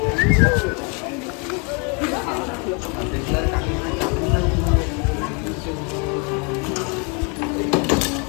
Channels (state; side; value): quieter; right; 34.1 dB